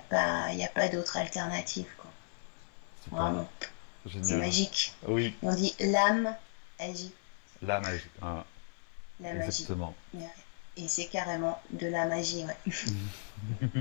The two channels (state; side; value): silent; right; 54 dB below the other